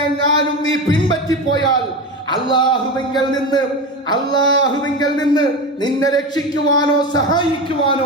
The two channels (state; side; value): normal; both; correlation 0.23